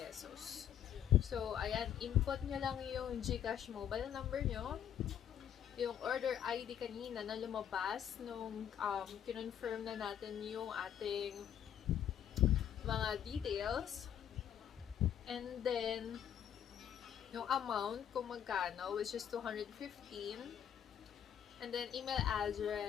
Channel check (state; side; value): quieter; right; 9.5 dB